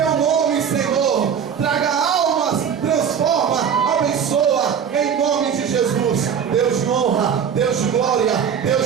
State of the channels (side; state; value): left; quieter; 7.7 dB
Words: nome, Senhor, traga almas, transforma, abençoa, em nome de Jesus. Deus de honra, Deus de glória,